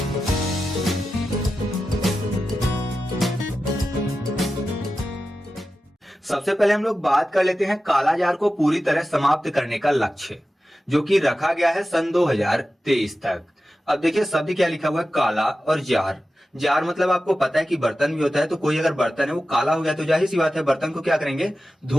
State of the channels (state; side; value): normal; both; correlation 0.93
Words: सबसे पहले हम लोग बात कर लेते हैं कालाजार को पूरी तरह समाप्त करने का लक्ष्य, जो कि रखा गया है सन 2023 तक। अब देखिए शब्द क्या लिखा हुआ है, काला और जार। जार मतलब आपको पता है कि बर्तन भी होता है, तो कोई अगर बर्तन है वो काला हो गया तो जाहिर सी बात है बर्तन को क्या करेंगे,